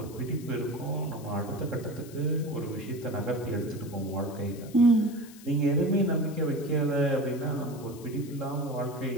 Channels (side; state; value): left; noise; hiss, 20 dB below the sound